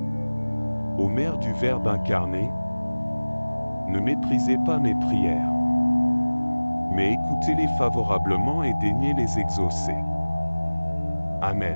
Ô Mère du Verbe incarné, ne méprisez pas mes prières, mais écoutez-les favorablement et daignez les exaucer.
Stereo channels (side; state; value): both; inverted; correlation -1.00